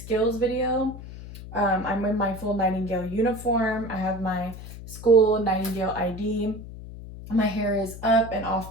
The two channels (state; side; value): noise; left; hum, 13 dB below the sound